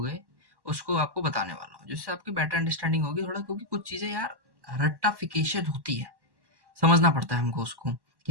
गए, उसको आपको बताने वाला हूँ, जिससे आपकी बेटर अंडरस्टैंडिंग होगी थोड़ा, क्योंकि कुछ चीज़ें यार रट्टाफिकेशन होती है, समझना पड़ता है हमको उसको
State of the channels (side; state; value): left; late; 1.1 ms